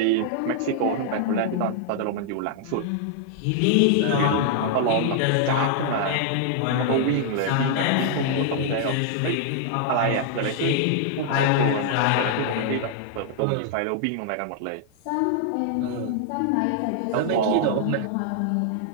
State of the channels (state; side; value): different; both; correlation -0.01